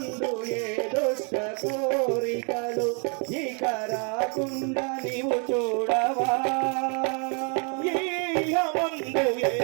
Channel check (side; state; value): left; quieter; 38.6 dB